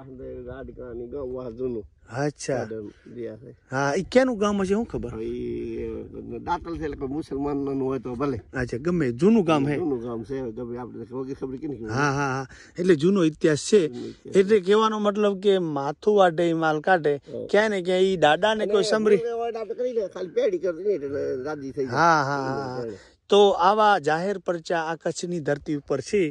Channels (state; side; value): identical; both; correlation 1.00